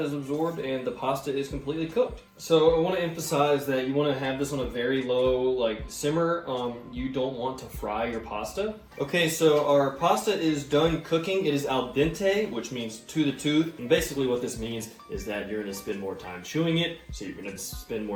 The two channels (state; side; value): identical; both; correlation 1.00